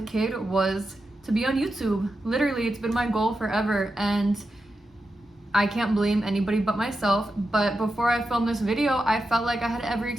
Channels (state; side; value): normal; both; correlation 0.89